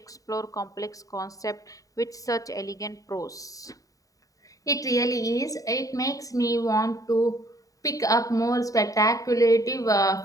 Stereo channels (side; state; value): right; late; 0.17 ms